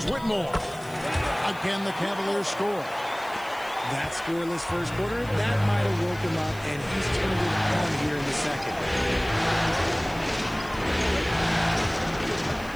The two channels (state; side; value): noise; left; hiss, 21 dB below the sound